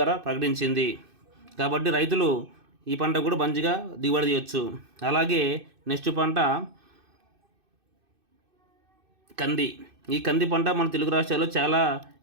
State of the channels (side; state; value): left; late; 2.6 ms